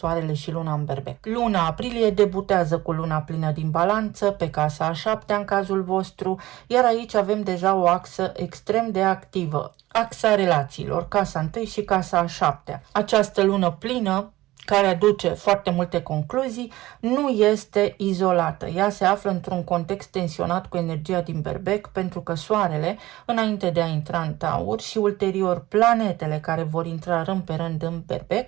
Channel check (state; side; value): quieter; left; 17.3 dB